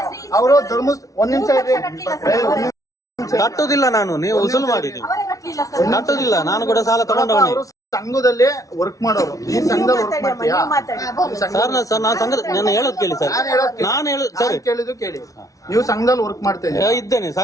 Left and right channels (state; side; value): late; right; 0.17 ms